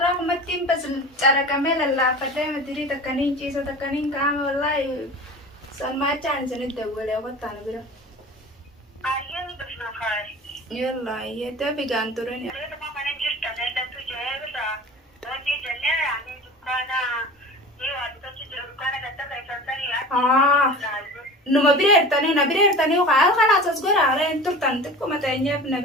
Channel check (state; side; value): normal; both; correlation 0.36